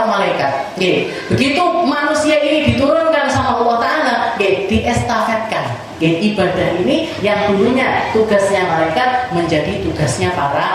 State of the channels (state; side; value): identical; both; correlation 1.00